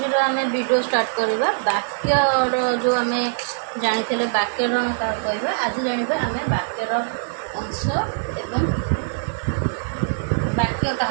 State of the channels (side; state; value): left; silent; digital silence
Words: आम video start करवा वाक्यर जो आम जानी वाक्यर क्या कहवा आज जाना आम वाक्यर अंश एवं वाक्य क्या